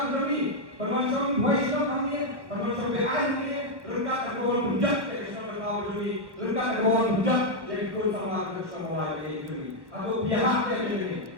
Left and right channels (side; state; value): left; late; 1.1 ms